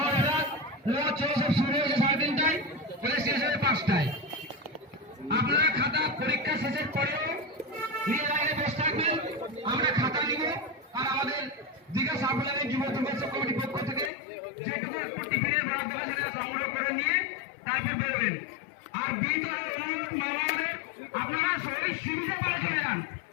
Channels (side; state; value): right; drops out; at 14.1 s